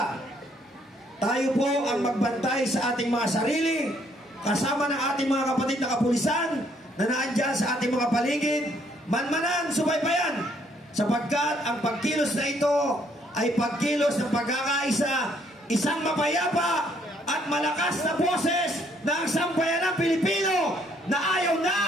tayo po ang magbantay sa ating mga sarili, kasama ng ating mga kapatid na kapulisan na naandyan sa ating mga paligid, manmanan, subaybayan, sapagkat ang pagkilos na ito ay pagkilos ng pagkakaisa, isang mapayapa at malakas na boses ng sambayanang Pilipino na ayaw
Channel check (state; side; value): normal; both; correlation 0.67